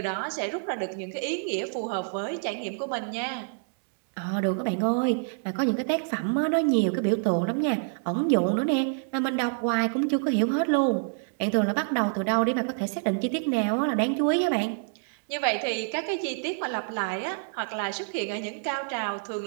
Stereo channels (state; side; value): silent; left; digital silence